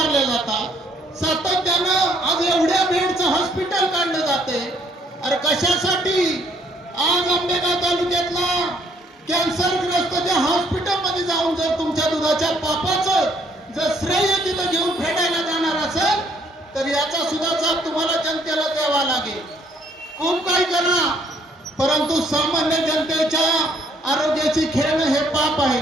जातात, सातत्यानं आज एवढ्या बेडचं हॉस्पिटल काढलं जाते. अरे कशासाठी? आज आंबेगाव तालुक्यातला कॅन्सरग्रस्त त्या हॉस्पिटलमध्ये जाऊन जर तुमच्या दुधाच्या पापाचं जर श्रेय तिथं घेऊन फेडायला जाणार असेल तर याचा सुद्धा जाब तुम्हाला जनतेला द्यावा लागेल. खूप काही करा, परंतु सामान्य जनतेच्या आरोग्याची खेळणं हे पाप आहे.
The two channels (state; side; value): normal; both; correlation 0.66